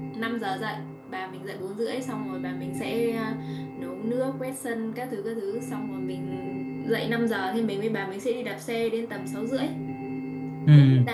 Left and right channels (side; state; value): both; identical; correlation 1.00